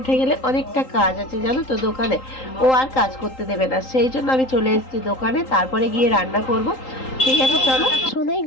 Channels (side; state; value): right; late; 3.8 ms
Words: গেলে অনেকটা কাজ আছে জানো তো দোকানে, ও আর কাজ করতে দেবে না, সেই জন্য আমি চলে এসেছি দোকানে। তারপরে গিয়ে রান্না করব। ঠিক আছে চলো। সোনাই